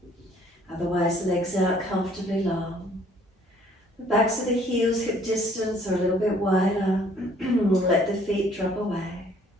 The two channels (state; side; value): normal; both; correlation 0.59